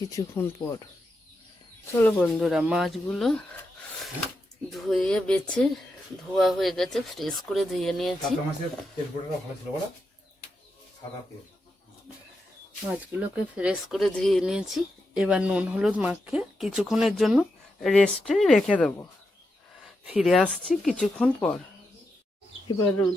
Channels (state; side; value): normal; both; correlation 0.86